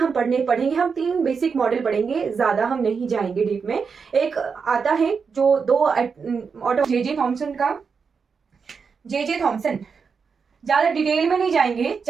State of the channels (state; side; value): quieter; left; 5.6 dB